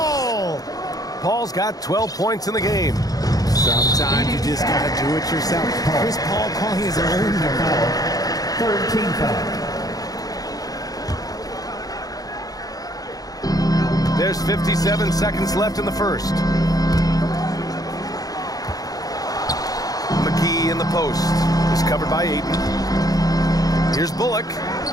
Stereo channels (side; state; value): right; late; 0.18 ms